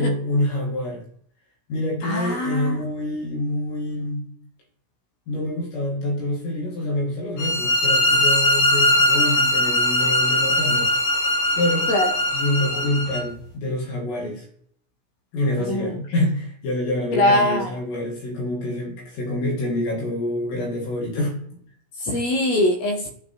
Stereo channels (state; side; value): late; right; 16 ms